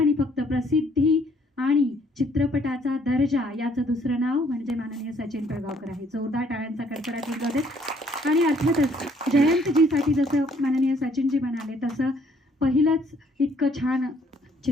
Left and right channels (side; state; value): both; normal; correlation 0.64